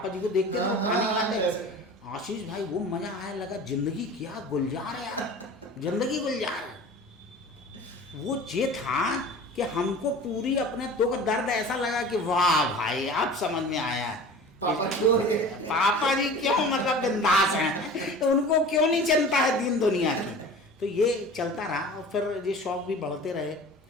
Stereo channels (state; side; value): normal; both; correlation 0.39